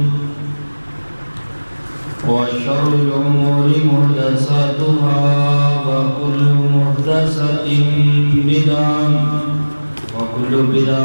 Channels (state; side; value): inverted; both; correlation -1.00